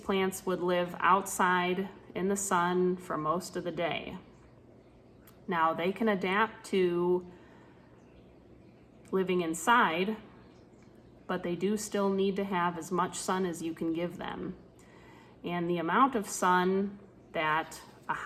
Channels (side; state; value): both; identical; correlation 1.00